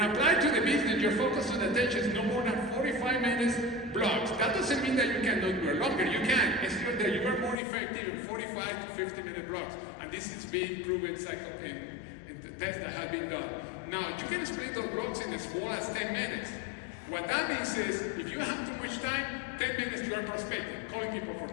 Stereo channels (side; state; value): right; drops out; at 7.6 s